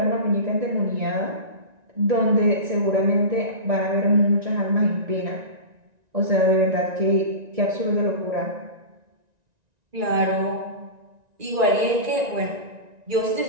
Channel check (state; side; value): late; left; 1.9 ms